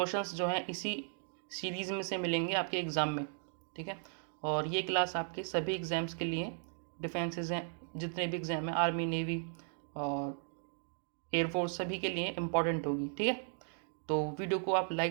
जो हैं इसी सीरीज़ में से मिलेंगे आपके एग्ज़ाम में। ठीक है, और ये क्लास आपके सभी एग्ज़ाम्स के लिए, डिफेंसेस हैं जितने भी एग्ज़ाम हैं, आर्मी, नेवी और एयरफोर्स, सभी के लिए इम्पॉर्टेंट होगी। ठीक है, तो वीडियो को आप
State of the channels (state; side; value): silent; left; 53 dB below the other